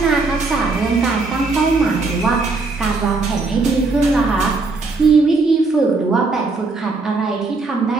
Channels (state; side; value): quieter; left; 3.7 dB